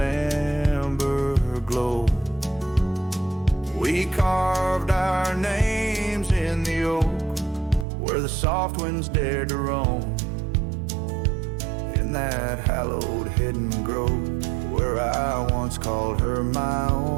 glow. We carved our names in the oak, where the soft winds dared to roam. In that hallowed hidden grove, where I once called her my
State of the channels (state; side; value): drops out; left; at 7.9 s